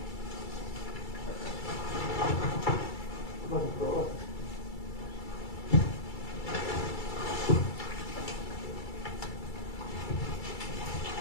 Fucking throw up.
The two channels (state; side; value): late; right; 2.3 ms